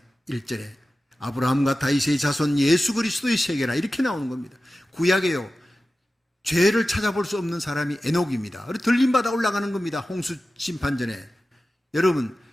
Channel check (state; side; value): normal; both; correlation 0.94